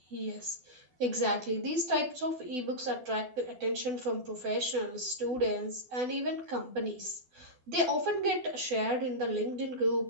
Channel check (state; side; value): late; left; 12 ms